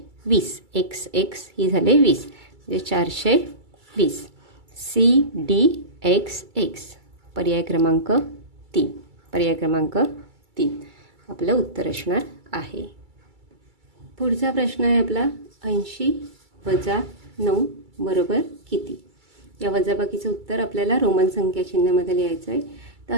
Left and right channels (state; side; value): late; left; 2.3 ms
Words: 20. XX ही झाले 20 म्हणजे 420. CDXX पर्याय क्रमांक 3. पर्याय क्रमांक 3 आपलं उत्तर असणार आहे. पुढचा प्रश्न आहे आपला 80 वजा 9 बरोबर किती? या वजाबाकीचं उत्तर आपल्याला रोमन संख्या चिन्हामध्ये लिहायचं आहे. तर